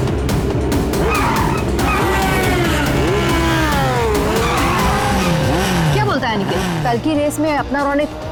क्या बोलता है निखिल? कल की रेस में अपना रौनक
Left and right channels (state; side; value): identical; both; correlation 1.00